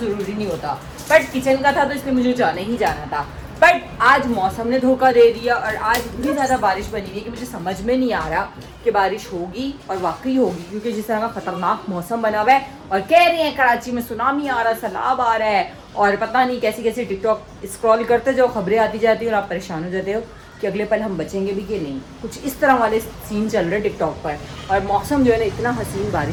नहीं होता, बट किचन का था तो इसलिए मुझे जाना ही जाना था। बट आज मौसम ने धोखा दे दिया और आज इतनी ज़्यादा बारिश बनी हुई है कि मुझे समझ में नहीं आ रहा कि बारिश होगी और वाकई होगी, क्योंकि जिस तरह का ख़तरनाक मौसम बना हुआ है। और कह रही हैं कराची में सुनामी आ रहा है, सैलाब आ रहा है, और पता नहीं कैसी कैसी टिकटॉक स्क्रॉल करते जाओ, खबरें आती जाती हैं और आप परेशान हो जाते हो कि अगले पल हम बचेंगे भी कि नहीं। कुछ इस तरह वाले सीन चल रहे टिकटॉक पर। और मौसम जो है ना इतना हसीन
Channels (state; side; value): identical; both; correlation 1.00